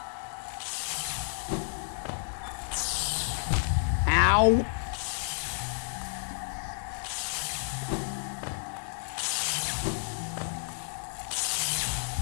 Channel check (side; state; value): right; silent; digital silence